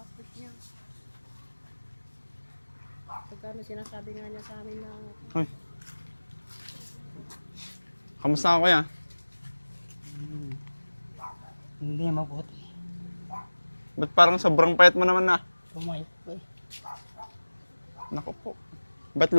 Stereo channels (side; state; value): both; inverted; correlation -1.00